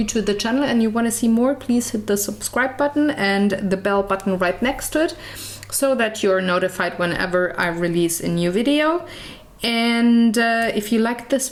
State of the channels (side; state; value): both; identical; correlation 1.00